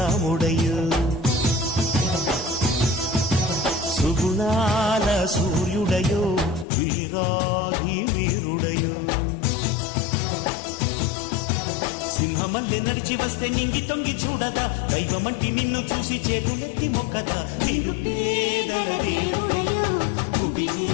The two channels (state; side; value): drops out; right; at 6.7 s